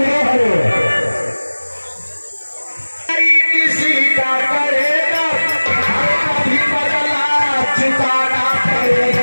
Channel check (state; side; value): inverted; both; correlation -1.00